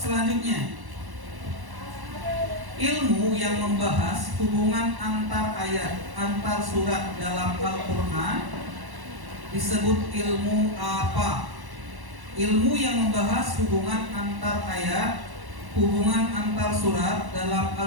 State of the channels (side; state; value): left; late; 1.1 ms